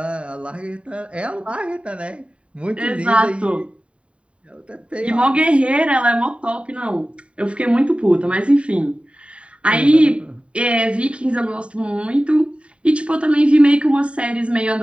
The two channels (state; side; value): late; left; 0.060 ms